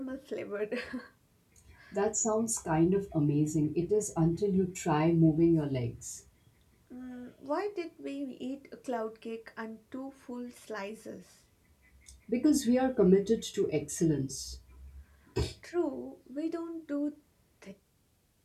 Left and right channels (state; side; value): identical; both; correlation 1.00